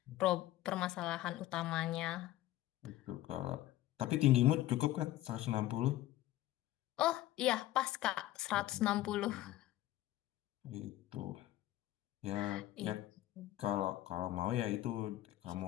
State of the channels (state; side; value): quieter; right; 15.0 dB